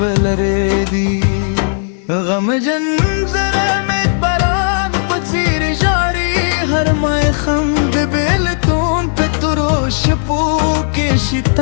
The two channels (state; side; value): silent; right; digital silence